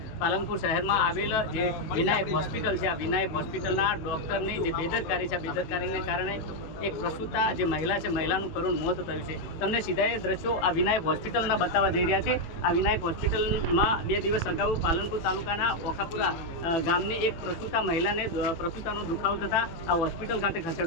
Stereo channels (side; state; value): right; late; 18 ms